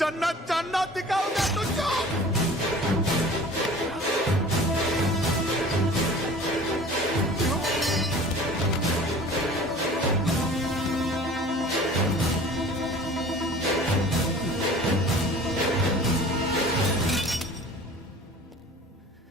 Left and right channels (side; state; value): both; normal; correlation 0.44